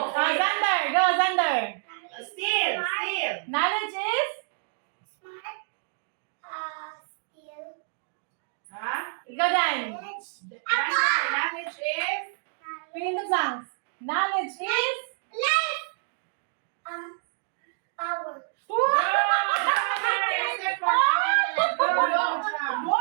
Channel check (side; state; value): left; silent; digital silence